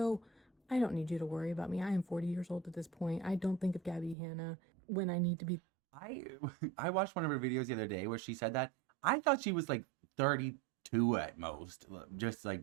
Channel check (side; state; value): left; drops out; at 4.2 s